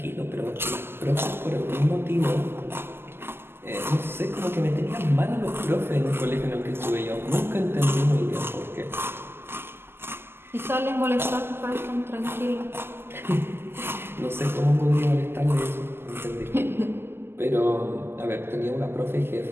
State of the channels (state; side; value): late; left; 0.11 ms